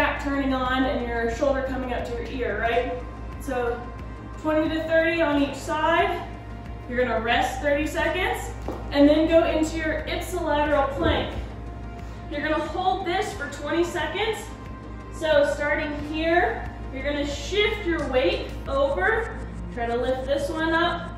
turning on and your shoulder coming up to your ear, right? So 20 to 30 on each side. You're going to rest 30 seconds and then go into your ipsilateral plank. You're going to hold this for 20 seconds. So starting here, you're going to shift your weight over. Try to lift this one up.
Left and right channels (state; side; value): identical; both; correlation 1.00